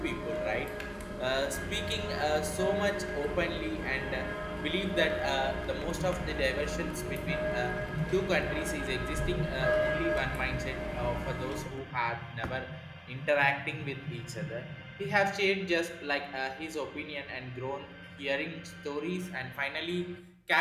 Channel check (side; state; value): both; identical; correlation 1.00